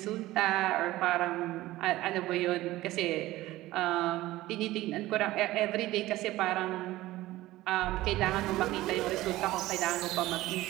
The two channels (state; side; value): quieter; left; 16.9 dB